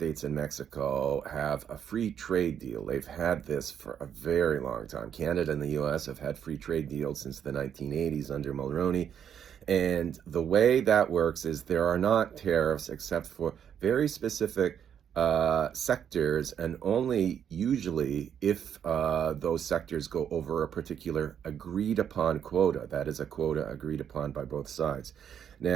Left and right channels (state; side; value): quieter; left; 8.7 dB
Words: and Mexico have a free trade deal. They've had this for a very long time. Canada and the U.S. have had free trade deals since the 1980s under Mulroney. And the way that works is there are not tariffs except for very specific sectors, and only usually if those sectors go over a particular agreed upon quota. That is a quota agreed upon by both sides.